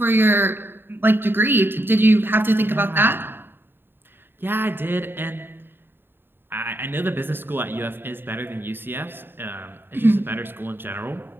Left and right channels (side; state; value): left; late; 0.10 ms